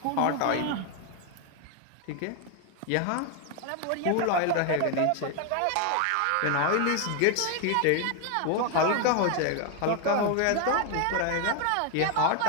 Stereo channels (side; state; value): both; different; correlation 0.01